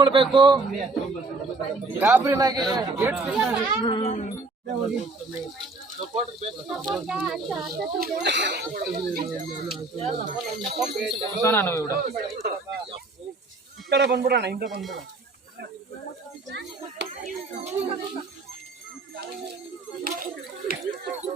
ಗಾಬರಿನಾಗಿ ಈ ಕಡೆ ಬಂದ್ಬಿಡೋಣ, ಹಿಂದೆ ಬಂದ್ಬಿಡೋಣ.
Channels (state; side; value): quieter; left; 3.4 dB